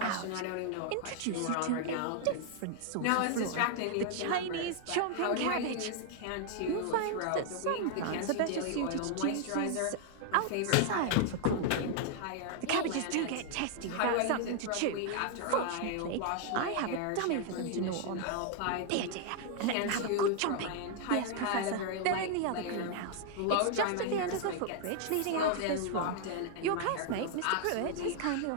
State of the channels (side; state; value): both; different; correlation 0.00